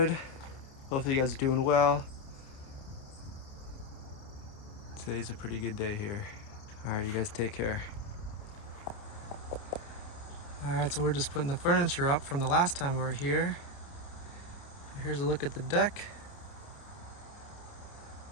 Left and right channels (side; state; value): right; late; 29 ms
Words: Hopefully you guys are doing well. Today's a pretty good day here. All right, you guys take care. All right, so we're just putting the furniture up from the last time we were here. Here's a look at the deck.